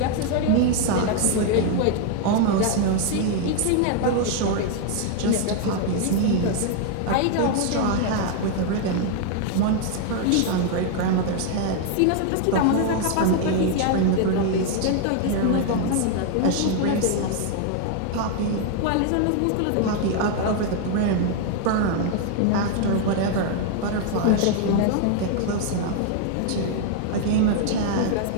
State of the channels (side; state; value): both; different; correlation 0.00